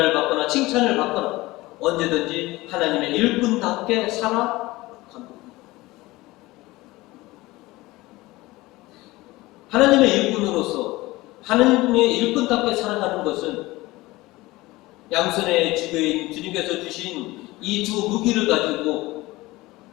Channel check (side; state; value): right; quieter; 19.9 dB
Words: 받거나 칭찬을 받거나 언제든지 하나님의 일꾼답게 살아갑니다. 하나님의 일꾼으로서 하나님의 일꾼답게 살아가는 것은 양손에 쥐고인 주님께서 주신 이 두 무기를 가지고